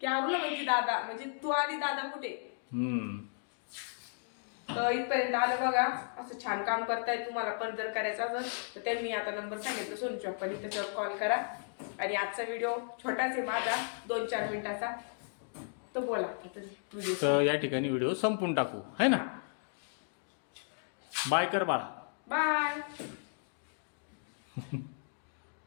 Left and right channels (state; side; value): silent; right; digital silence